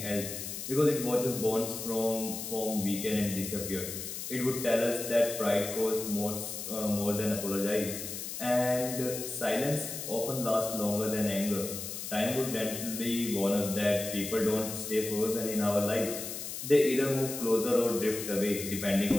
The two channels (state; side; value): noise; left; hiss, 7 dB below the sound